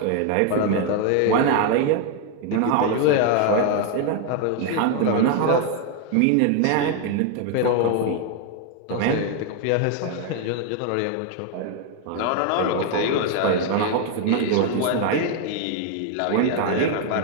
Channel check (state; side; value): different; both; correlation 0.01